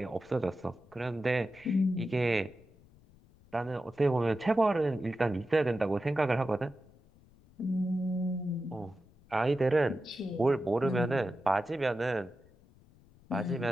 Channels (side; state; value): left; noise; rumble, 27 dB below the sound